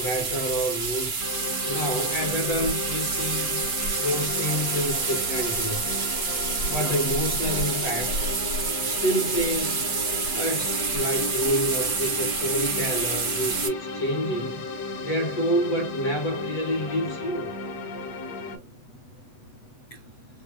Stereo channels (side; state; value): right; late; 7.8 ms